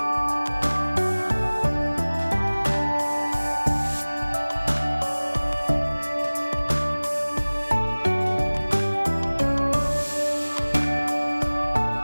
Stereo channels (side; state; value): both; inverted; correlation -1.00